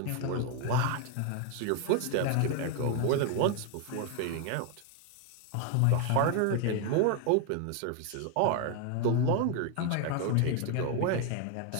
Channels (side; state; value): both; different; correlation 0.01